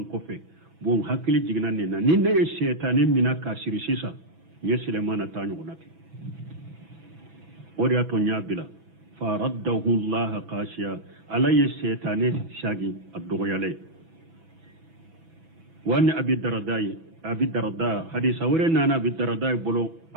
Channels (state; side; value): late; left; 6.1 ms